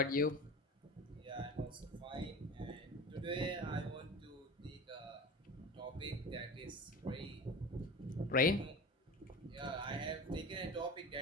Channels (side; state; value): both; normal; correlation 0.33